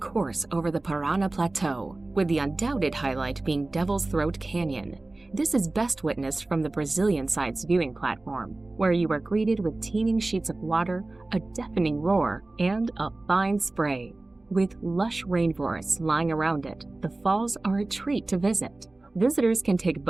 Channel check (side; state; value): left; quieter; 3.0 dB